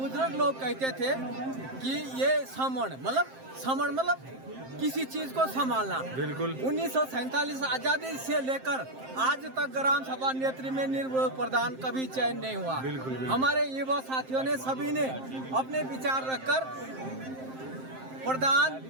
लोग कहते थे कि ये समण मतलब किसी चीज को संभालना। बिल्कुल 1947 आजादी से लेकर आज तक ग्राम सभा नेत्री में निर्विरोध प्रधान कभी चयन नहीं हुआ। बिल्कुल। हमारे युवा साथियों ने सभी ने अपने विचार रखकर प्रधान,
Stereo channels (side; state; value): left; late; 7.6 ms